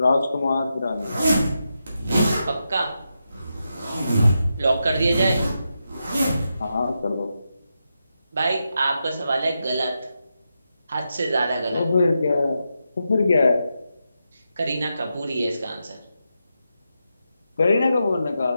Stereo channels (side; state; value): both; inverted; correlation -0.87